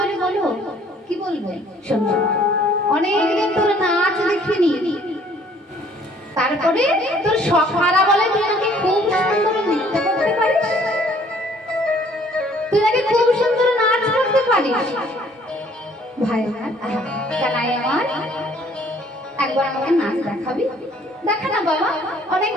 বলো। কি বলবে? শোন, অনেকদিন তোর নাচ দেখিনি, তারপরে তোর সখারা বলে তুই নাকি খুব সুন্দর নৃত্য করতে পারিস, তুই নাকি খুব সুন্দর নাচ করতে পারিস। ভাই কানাই আমার, একবার আমাকে নাচ দেখাবি? দেখা না বাবা,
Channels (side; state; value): both; normal; correlation 0.59